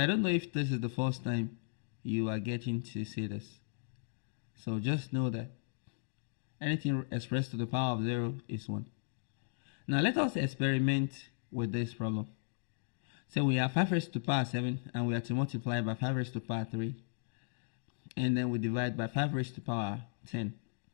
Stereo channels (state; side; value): silent; right; digital silence